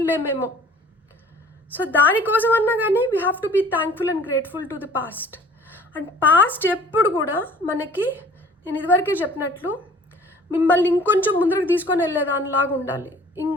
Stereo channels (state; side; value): normal; both; correlation 0.50